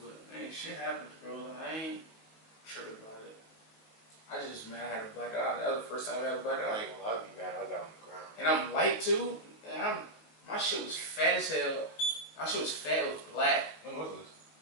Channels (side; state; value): right; late; 18 ms